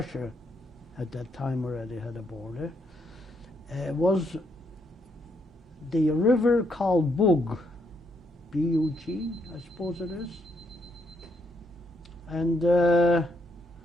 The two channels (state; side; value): normal; both; correlation 0.75